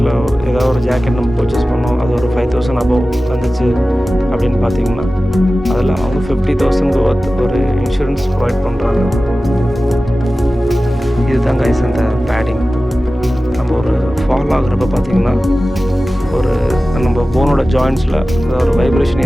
ஏதாவது ஒரு ஜாக்கெட் நம்ம பர்ச்சேஸ் பண்ணோம், அது ஒரு 5000 அபவ் வந்துச்சு அப்படின்னு பார்த்தீங்கன்னா அதில் அவங்க 50,000 ஒர்த் ஒரு இன்சூரன்ஸ் ப்ரொவைட் பண்ணுறாங்க. இதுதான் கைஸ் அந்த பேடிங். நம்ம ஒரு ஃபால் ஆகுறப்ப பார்த்திங்கன்னா ஒரு நம்ம போனோட ஜாயின்ஸில் ஒரு வைப்ரேஷன்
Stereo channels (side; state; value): both; normal; correlation 0.96